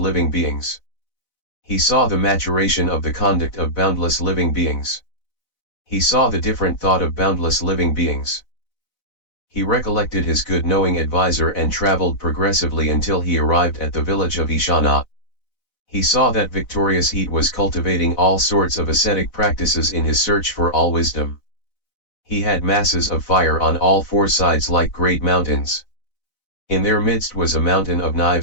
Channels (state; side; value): late; right; 4.0 ms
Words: beings. He saw the maturation of the conduct of boundless living beings. He saw the different thought of boundless living beings. He recollected his good knowing advisor and traveled progressively until he arrived at the village of Ishana. He saw that victorious heat was cultivating all sorts of ascetic practices in his search for all wisdom. He had masses of fire on all 4 sides like great mountains. In their midst was a mountain of